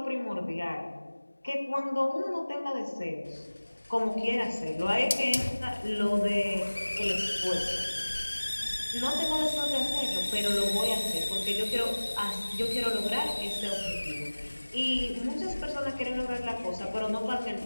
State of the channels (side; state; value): both; inverted; correlation -1.00